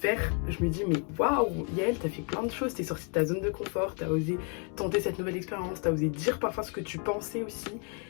je me dis mais waouh, Yael, t'as fait plein de choses, t'es sortie de ta zone de confort, t'as osé tenter cette nouvelle expérience, t'as osé dire parfois ce que tu pensais aussi.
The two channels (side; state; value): right; quieter; 38.2 dB